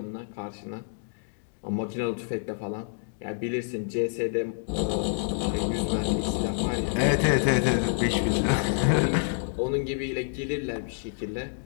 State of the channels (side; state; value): right; silent; digital silence